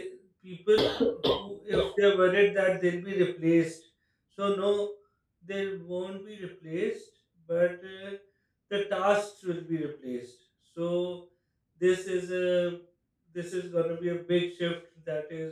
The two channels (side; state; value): both; identical; correlation 1.00